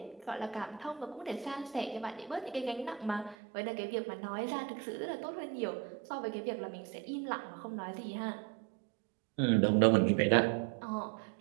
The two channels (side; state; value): left; drops out; at 3.4 s